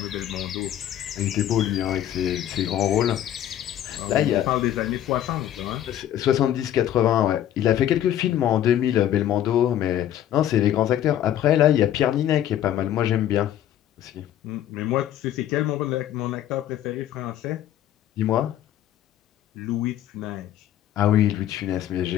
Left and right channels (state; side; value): quieter; right; 11.4 dB